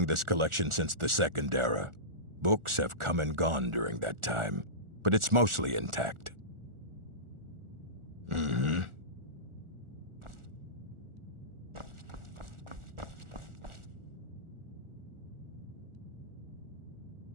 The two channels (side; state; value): left; late; 1.4 ms